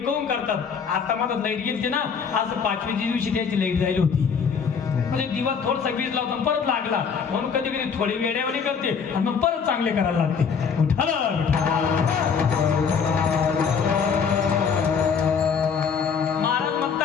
काऊन करतात. आता मला लाईट गेली ना, असं 5वीच्या दिवशी त्याची लाईट जायला होती, म्हणजे दिवा थोडसा वीज लावतो परत लागला, म्हणून कधी कधी थोडी वेडेवाणी करते आणि मग परत चांगले करायला लागते. महाराज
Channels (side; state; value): right; quieter; 6.3 dB